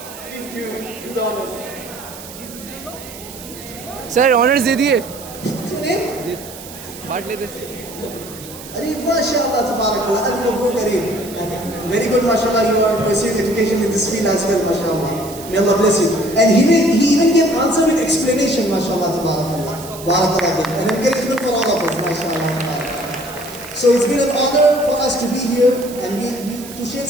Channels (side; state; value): right; noise; hiss, 15 dB below the sound